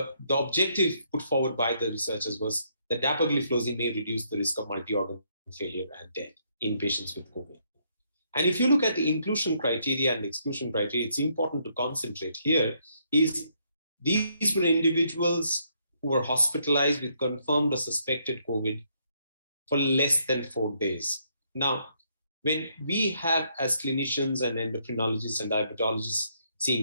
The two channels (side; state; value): both; inverted; correlation -0.72